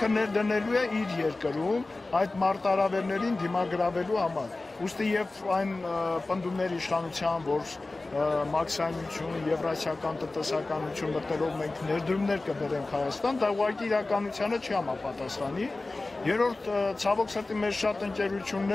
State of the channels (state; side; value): quieter; right; 3.2 dB